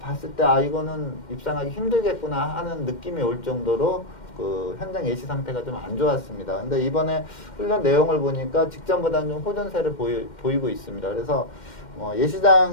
봤을 때 이거는 입상하기 힘들겠구나 하는 느낌이 올 정도로 그 현장 예시 상태가 좀 안 좋았습니다. 근데 이번에 훈련 내용을 보니까 직전보다는 좀 호전세를 보이고 있습니다. 그래서 뭐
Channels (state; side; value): late; right; 2.1 ms